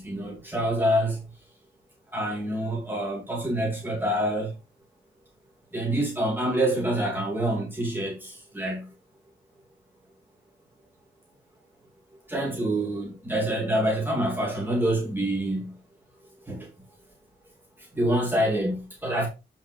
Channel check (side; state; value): both; normal; correlation 0.64